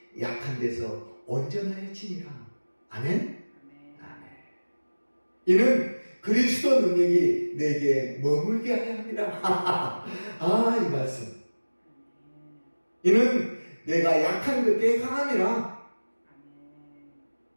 약한 데서 온전하여지니라. 아멘. 이는 그리스도 능력이 내게 머물게 하려 합니다. 이 말씀. 이는 내가 약한 그때에 강함이라.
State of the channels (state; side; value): inverted; both; correlation -1.00